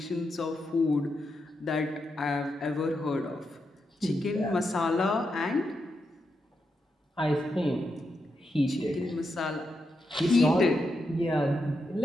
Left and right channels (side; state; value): both; normal; correlation 0.85